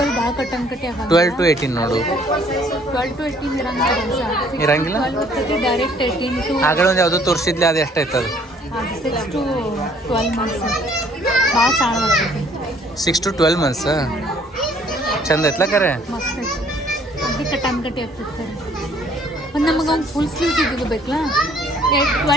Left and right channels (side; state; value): both; normal; correlation 0.60